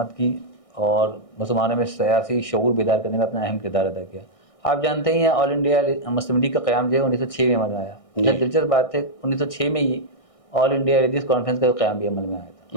کی اور مسلمانوں میں سیاسی شعور بیدار کرنے میں اپنا اہم کردار ادا کیا. آپ جانتے ہی ہیں آل انڈیا مسلم لیگ کا قیام جو ہے 1906 میں عمل میں آیا. دلچسپ بات ہے 1906 میں ہی آل انڈیا حدیث کانفرنس کا قیام بھی عمل میں آیا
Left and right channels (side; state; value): right; late; 1.6 ms